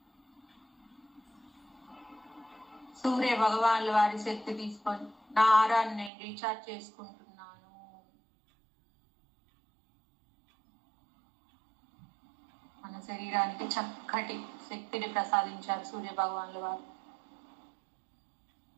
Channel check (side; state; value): left; drops out; at 6.1 s